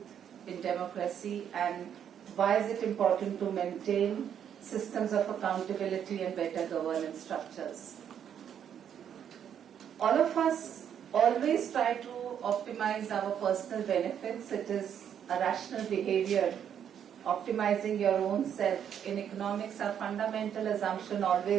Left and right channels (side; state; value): left; quieter; 8.9 dB